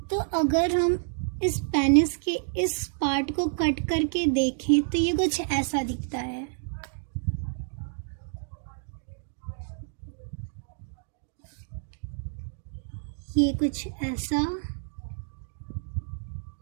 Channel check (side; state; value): left; silent; digital silence